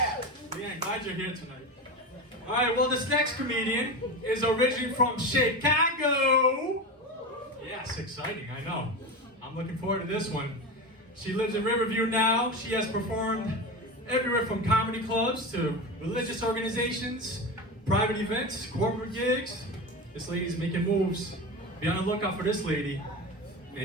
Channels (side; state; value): both; normal; correlation 0.23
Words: Leanne, glad you're here tonight. All right, well, this next comedian is originally from Chicago. Yes, exciting, I know. I'm looking forward to this one. She lives in Riverview now. She has performed everywhere from comedy clubs to religious organizations, private events, corporate gigs. This lady's making moves. Be on the lookout for this lady.